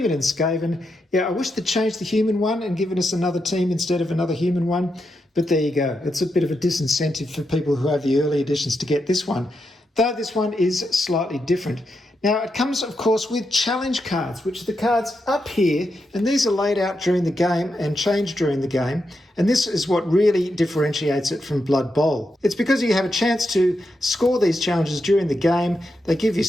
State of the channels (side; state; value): both; normal; correlation 0.85